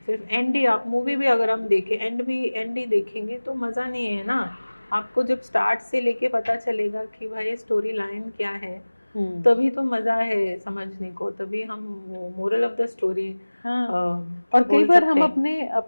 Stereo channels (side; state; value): both; inverted; correlation -1.00